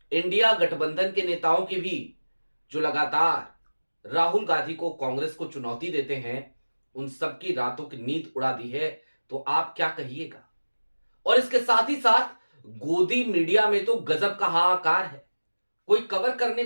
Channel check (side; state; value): both; inverted; correlation -1.00